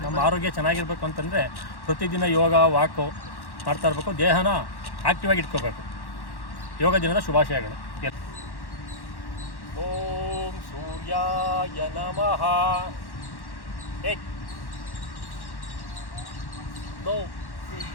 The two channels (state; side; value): late; right; 1.1 ms